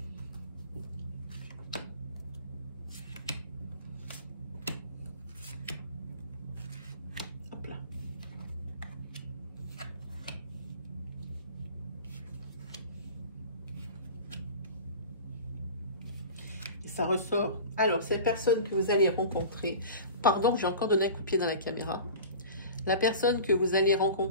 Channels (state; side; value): inverted; both; correlation -0.38